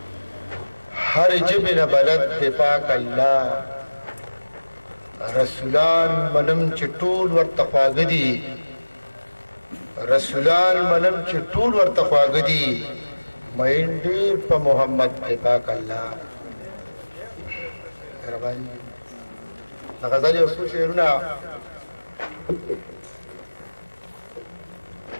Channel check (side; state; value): both; inverted; correlation -1.00